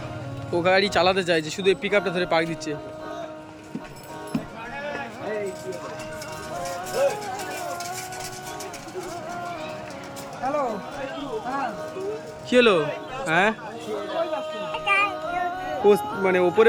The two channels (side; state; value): both; identical; correlation 1.00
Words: ও গাড়ি চালাতে চাইছে, শুধু এই পিক আপটা ধরে পাক দিচ্ছে। হ্যালো, কি হলো? হ্যাঁ, ও মানে